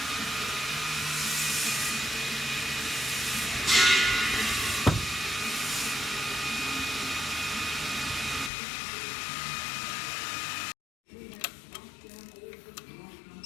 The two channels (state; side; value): drops out; right; at 8.5 s